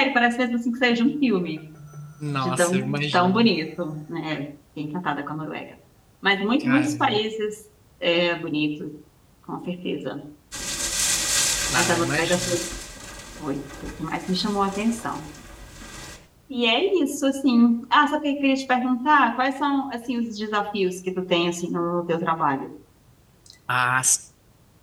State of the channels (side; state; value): both; identical; correlation 1.00